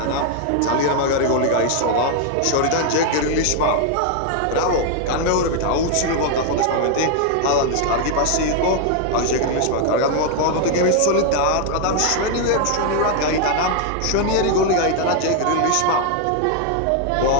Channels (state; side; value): different; both; correlation 0.00